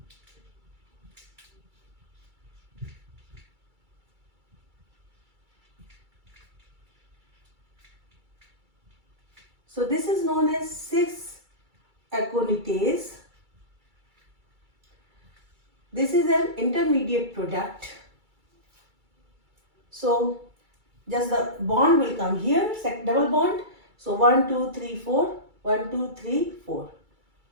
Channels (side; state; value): left; late; 2.3 ms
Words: So this is known as 6-aconitase. This is an intermediate product. So just the bond will come here, double bond. So 1, 2, 3, 4, 1, 2, 3, 4.